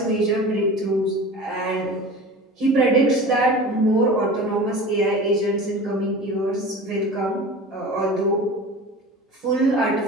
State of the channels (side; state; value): both; normal; correlation 0.35